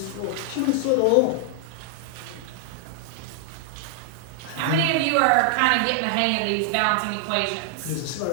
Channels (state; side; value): different; both; correlation 0.00